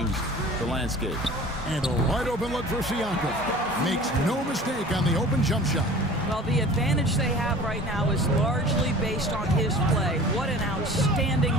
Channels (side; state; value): both; normal; correlation 0.43